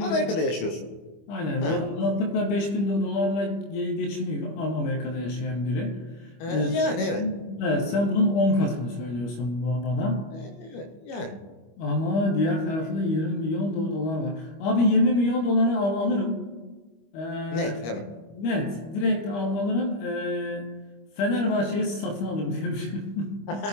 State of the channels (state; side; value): late; right; 25 ms